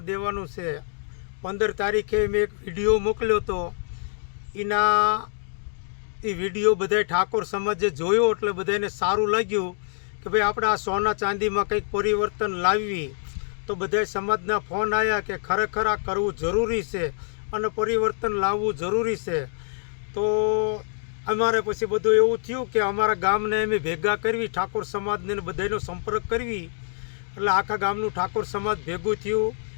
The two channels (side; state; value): right; silent; digital silence